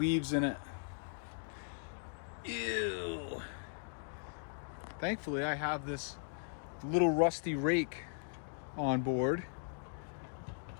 in it. Ew. Thankfully, I have this little rusty rake on board.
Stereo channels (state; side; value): silent; right; digital silence